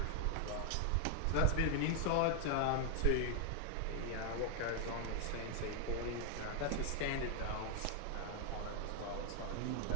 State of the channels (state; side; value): different; both; correlation 0.00